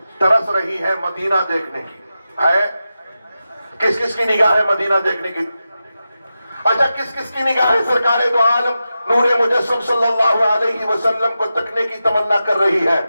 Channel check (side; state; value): both; inverted; correlation -0.91